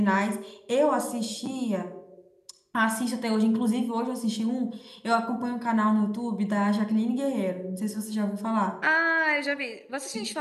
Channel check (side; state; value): both; identical; correlation 1.00